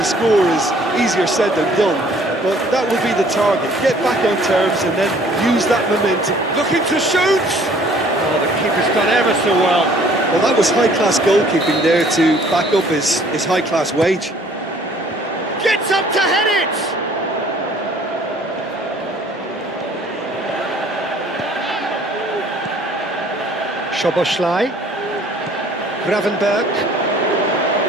score is easier said than done, but that will be the target. Get back on terms and then use that momentum. Looking to shoot! Oh, the keeper's done ever so well. Well, that was high-class goalkeeping there to back up his high-class wage. Gets up to head it! Szoboszlai. Gravenberg.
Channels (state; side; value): normal; both; correlation 0.56